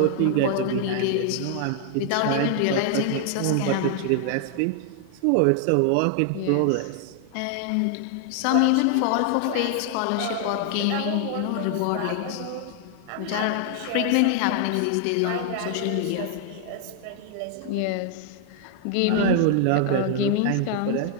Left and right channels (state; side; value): different; both; correlation 0.00